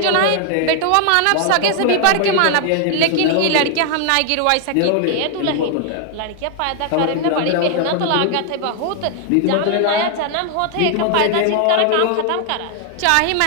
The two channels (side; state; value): both; different; correlation 0.00